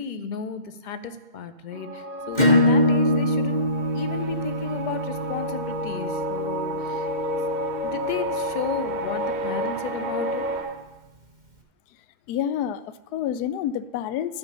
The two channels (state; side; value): late; left; 2.1 ms